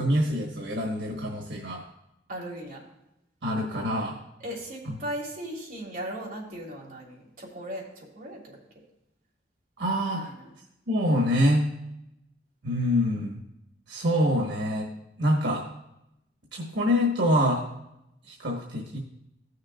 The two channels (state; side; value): normal; both; correlation 0.52